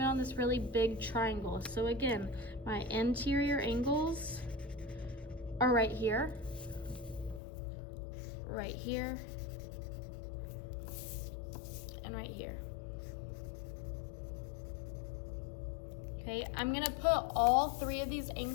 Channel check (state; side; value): drops out; right; at 7.4 s